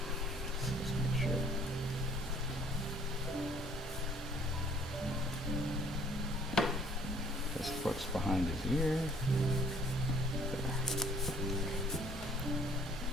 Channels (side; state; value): both; normal; correlation 0.59